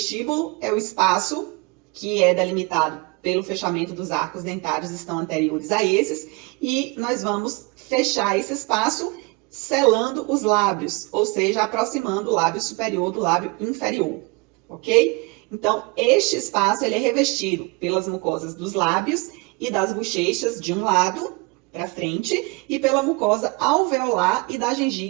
é o espaço que é delimitado pelo fechamento dos arcos dentários, estão anteriores a esses, e nós vamos fechar esse espaço selando os lábios, ou seja, aproximando o lábio superior do lábio inferior, ok? Então, este espaço ele é revestido pelas mucosas dos lábios e das bochechas de um lado, para frente, e pela mucosa alveolar e da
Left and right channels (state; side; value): quieter; left; 28.0 dB